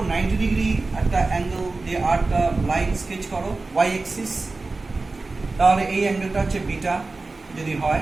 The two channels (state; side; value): quieter; left; 3.6 dB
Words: 90 ডিগ্রি একটা অ্যাঙ্গেল দিয়ে আর একটা লাইন স্কেচ করো ওয়াই অ্যাক্সিস, তাহলে এই অ্যাঙ্গেলটা হচ্ছে বিটা যদি